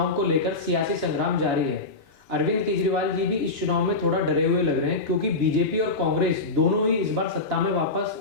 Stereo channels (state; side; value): quieter; right; 3.4 dB